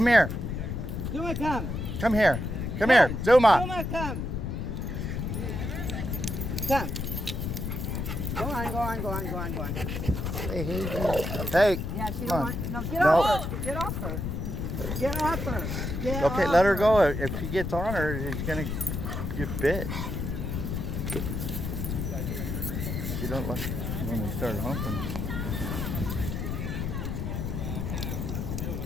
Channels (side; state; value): left; noise; rumble, 3 dB below the sound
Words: here. Zuma, come. Come here. Come here. Zuma. Zuma, come. Come. Go on, go on, go on, go on, go on. Hey, hey, hey. Hey. Yeah, she Come don't on. want. No, get No. off her. Get off her. Get off her. Get Okay, off let her go. If he gets on her, he's gonna get bit. She don't like when they start humping.